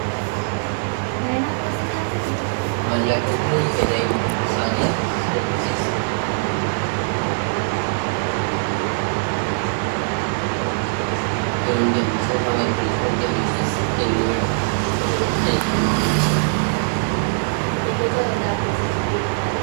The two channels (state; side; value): silent; left; digital silence